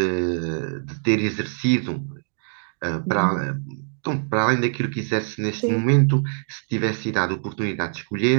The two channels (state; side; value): silent; left; digital silence